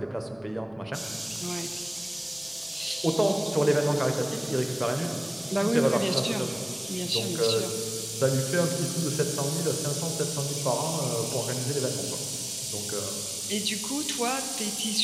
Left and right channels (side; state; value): right; noise; hum, 29 dB below the sound